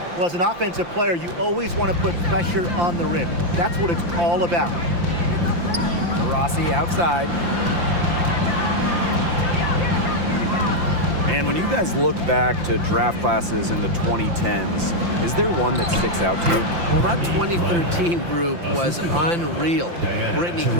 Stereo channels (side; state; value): left; late; 5.8 ms